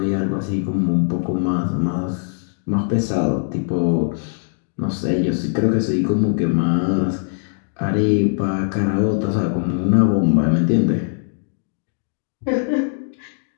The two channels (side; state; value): right; silent; 62 dB below the other